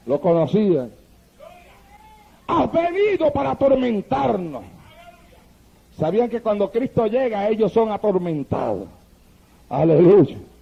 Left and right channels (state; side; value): identical; both; correlation 1.00